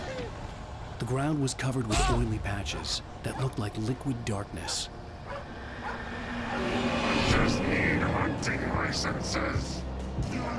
The ground was covered with oily patches that looked like liquid darkness. I just need hunting licenses.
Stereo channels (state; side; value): identical; both; correlation 1.00